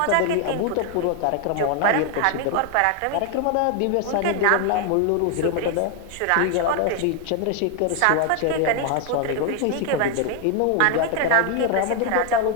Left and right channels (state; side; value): different; both; correlation 0.00